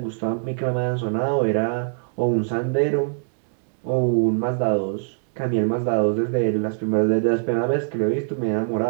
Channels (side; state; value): left; silent; digital silence